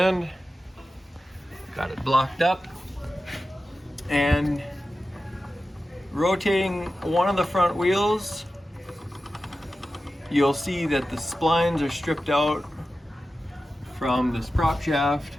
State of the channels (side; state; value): both; normal; correlation 0.93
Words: got it blocked up, and rotating one of the front wheels, you'll see that the splines are stripped out from this prop shaft